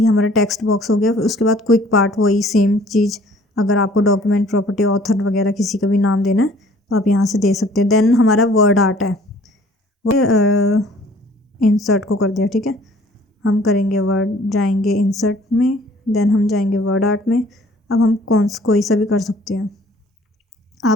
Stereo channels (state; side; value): normal; both; correlation 0.55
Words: हमारा टेक्स्ट बॉक्स हो गया। फिर उसके बाद क्विक पार्ट, वही सेम चीज़, अगर आपको डॉक्यूमेंट, प्रॉपर्टी, ऑथर वगैरह किसी का भी नाम देना है तो आप यहाँ से दे सकते हैं। देन हमारा वर्ड आर्ट है, वो इंसर्ट को कर दिया, ठीक है। हम करेंगे वर्ड, जाएंगे इंसर्ट में, देन हम जाएंगे वर्ड आर्ट में। अब हम कोई सा भी कर सकते हैं,